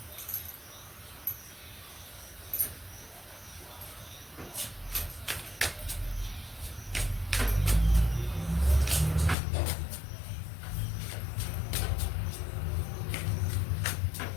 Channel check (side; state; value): right; drops out; at 9.3 s